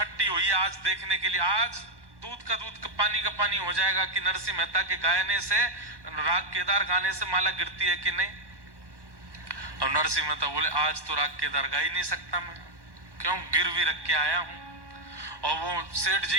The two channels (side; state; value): left; late; 1.1 ms